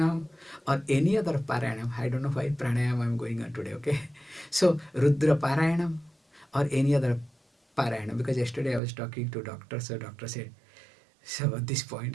or any other parayanam. I don't know why pranayam I'm going on today, okay? So Rudra parayanam or any other parayanam, because yesterday I was talking to doctor, so doctor said, so at this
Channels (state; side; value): drops out; left; at 8.8 s